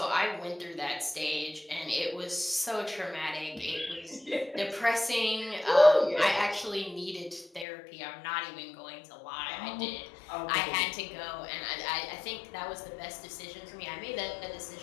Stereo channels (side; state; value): right; drops out; at 7.7 s